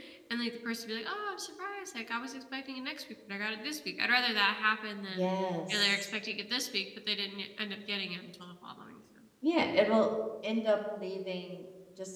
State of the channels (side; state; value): both; identical; correlation 1.00